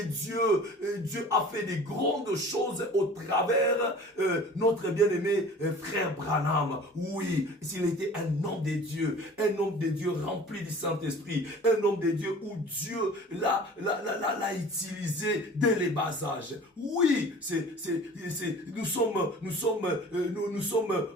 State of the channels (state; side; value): normal; both; correlation 0.44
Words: Dieu a fait des grandes choses au travers notre bien-aimé frère Branham. Oui, s'il était un homme de Dieu rempli du Saint-Esprit, un homme de Dieu où Dieu l'a utilisé dès les bas âges. Oui, nous sommes